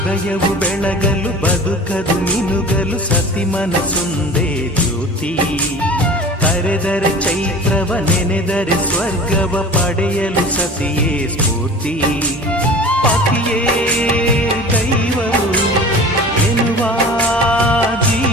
ಹೃದಯವು ಬೆಳಗಲು ಬದುಕದು ಮಿನುಗಲು ಸತಿ ಮನಸೊಂದೇ ಜ್ಯೋತಿ. ಕರೆದರೆ ಚೈತ್ರವ ನೆನೆದರೆ ಸ್ವರ್ಗವ ಪಡೆಯಲು ಸತಿಯೇ ಸ್ಫೂರ್ತಿ. ಪತಿಯೇ ದೈವವು ಎನ್ನುವ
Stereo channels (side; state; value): both; normal; correlation 0.39